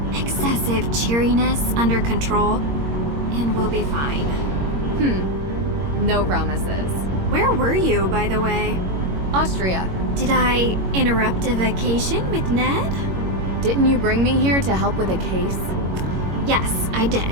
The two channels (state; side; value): late; left; 21 ms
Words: excessive cheeriness under control, and we'll be fine. No promises. Where were you, by the way? Austria. Did I interrupt a vacation with Ned? Didn't you bring me here to help with a case? Yes, I